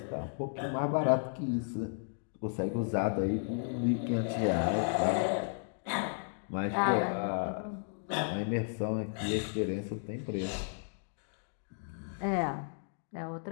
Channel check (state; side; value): silent; right; digital silence